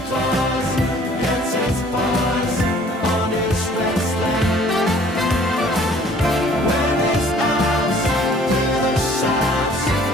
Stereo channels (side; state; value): both; normal; correlation 0.55